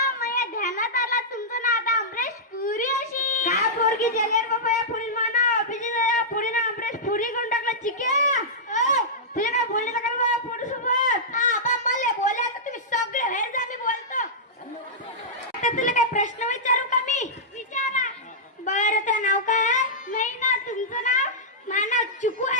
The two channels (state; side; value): normal; both; correlation -0.11